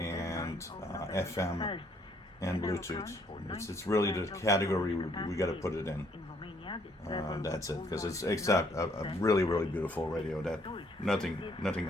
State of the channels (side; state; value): both; normal; correlation 0.66